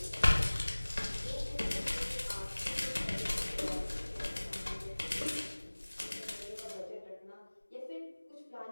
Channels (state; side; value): inverted; both; correlation -1.00